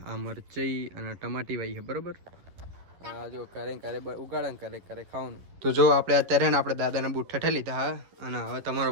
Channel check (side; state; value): left; late; 11 ms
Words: આ મરચઈ અને ટમાટી વાઈ છે, બરોબર. આ જો ક્યારે ઉગાડા ક્યારે ક્યારે ખાવાનું. તો જો આપણે અત્યારે ને આપણે દાદાના બૂટ ઠઠે લીધા હા. અને હવે તમારો